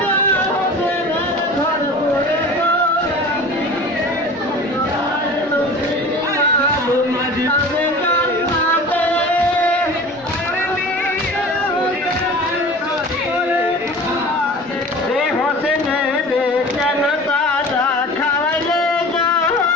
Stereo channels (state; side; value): normal; both; correlation 0.39